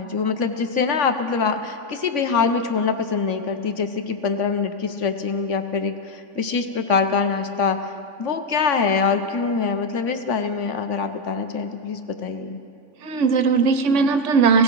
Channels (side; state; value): left; late; 3.5 ms